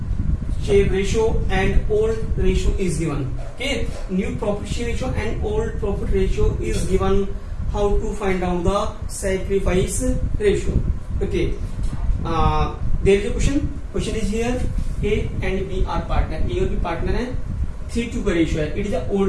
share ratio and old ratio is given. Okay, new profit share ratio and old profit ratio is given. How to find out the sacrifice ratio? Okay, there is a question. Question is here. A and B are partner. A और B partner है. 3:2 का ratio है. It is a old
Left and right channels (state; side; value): identical; both; correlation 1.00